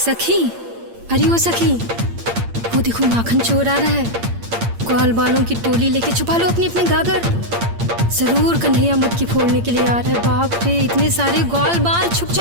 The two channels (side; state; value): left; late; 8.7 ms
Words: सखी, अरे ओ सखी, वो देखो माखन चोर आ रहा है। ग्वाल बालों की टोली लेके छुपा लो अपनी अपनी गागर। जरूर कन्हैया मटकी फोड़ने के लिए आ रहा है। बाप रे, इतने सारे ग्वाल बाल, छुप